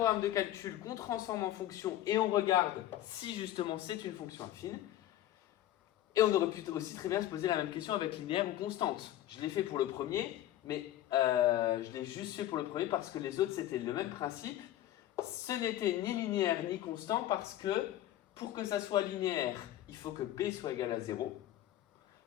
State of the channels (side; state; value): right; quieter; 13.4 dB